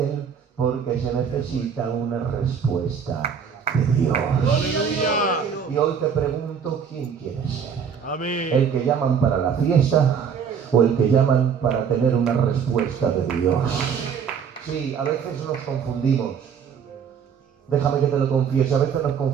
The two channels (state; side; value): quieter; left; 7.1 dB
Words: él porque se necesita una respuesta de Dios. Aleluya. Y hoy te pregunto, ¿quién quieres ser? Amén. ¿El que llaman para la fiesta o el que llaman para tener una respuesta de Dios? Sí, a veces nos confundimos. Déjame que te lo confiese, a veces nos